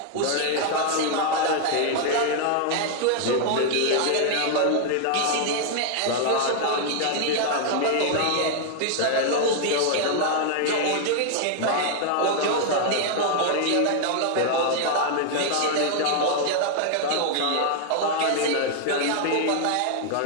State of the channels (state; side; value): different; both; correlation 0.00